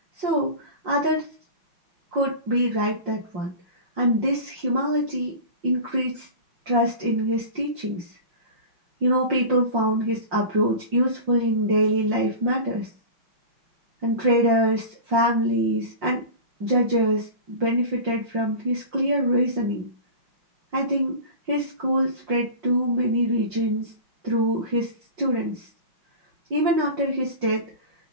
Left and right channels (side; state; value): left; late; 5.6 ms